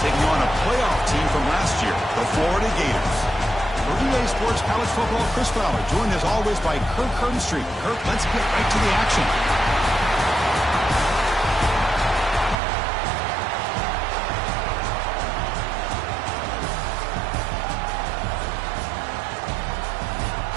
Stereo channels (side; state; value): left; drops out; at 12.6 s